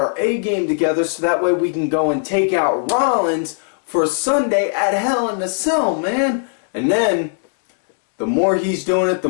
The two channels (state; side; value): silent; right; 67 dB below the other